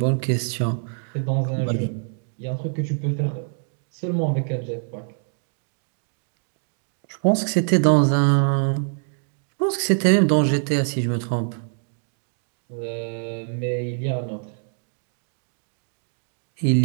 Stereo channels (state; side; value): silent; left; 62 dB below the other